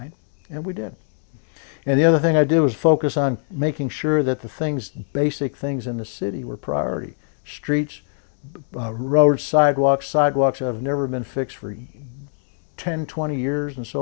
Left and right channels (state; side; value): silent; right; 64 dB below the other